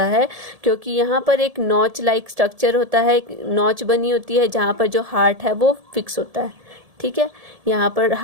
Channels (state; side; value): late; left; 1.7 ms